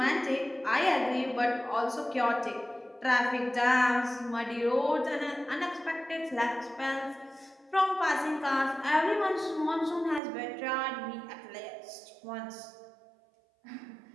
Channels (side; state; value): left; drops out; at 10.2 s